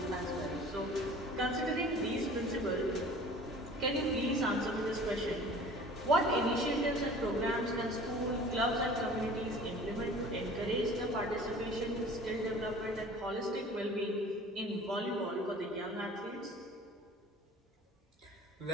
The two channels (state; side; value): normal; both; correlation 0.45